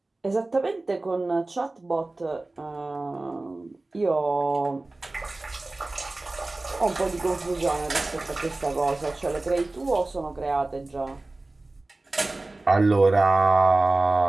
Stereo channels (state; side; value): quieter; left; 3.0 dB